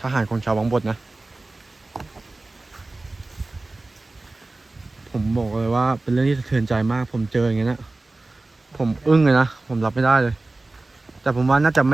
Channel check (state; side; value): quieter; left; 3.1 dB